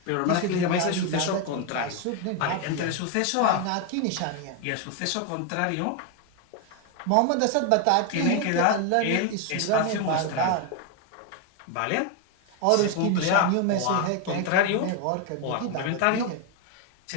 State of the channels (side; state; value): both; different; correlation 0.01